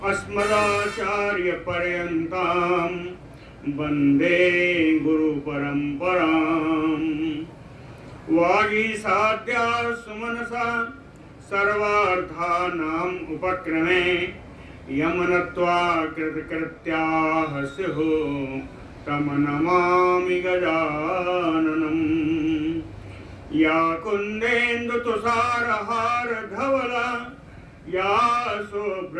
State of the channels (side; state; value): both; identical; correlation 1.00